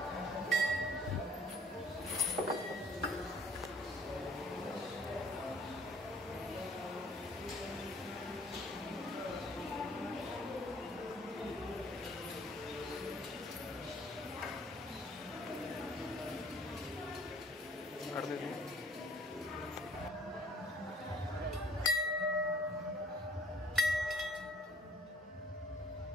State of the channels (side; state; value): both; normal; correlation 0.57